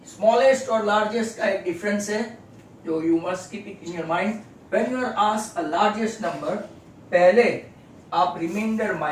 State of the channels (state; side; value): identical; both; correlation 1.00